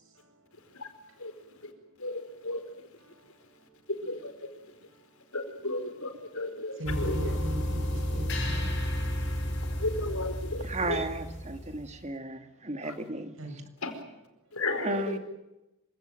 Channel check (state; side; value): normal; both; correlation 0.37